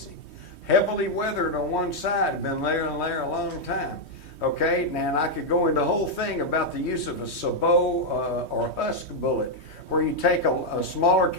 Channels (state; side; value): late; right; 3.2 ms